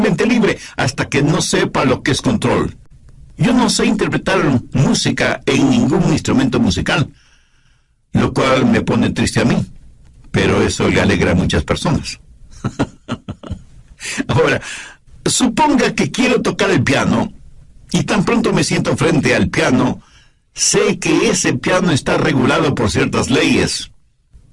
libre hasta que no sepa lo que es control. Yo no sé interpretar música en ningún instrumento musical, lo cual me pone triste a mí, pero eso le alegra a muchas personas. Ahora, suponga que quiero tocar el piano, y tan pronto me siento frente al piano, sé que ese piano está regulado por ciertas leyes,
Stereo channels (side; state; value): both; identical; correlation 1.00